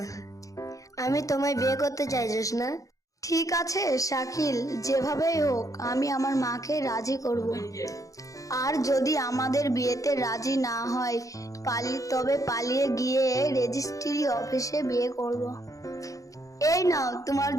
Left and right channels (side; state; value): right; late; 0.16 ms